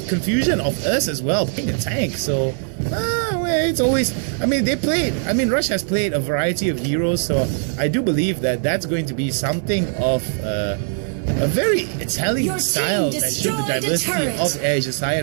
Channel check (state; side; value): silent; left; 65 dB below the other